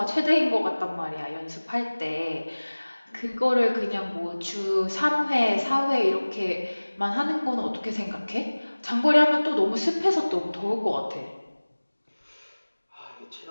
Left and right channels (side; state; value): both; inverted; correlation -1.00